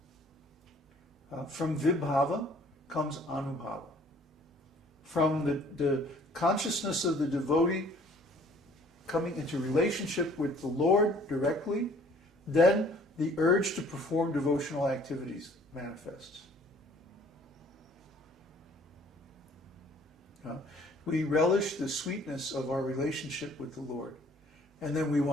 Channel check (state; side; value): normal; both; correlation 0.56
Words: From vibhava comes anubhava. From the consciousness of the devotee coming into relationship with the Lord directly, then the urge to perform devotional activities manifests. We relish the sweetness of our relationship with the Lord, and then we